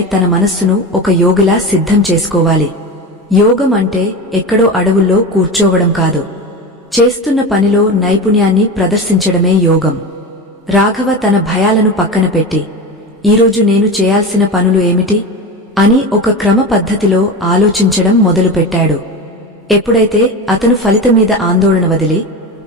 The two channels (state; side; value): normal; both; correlation 0.25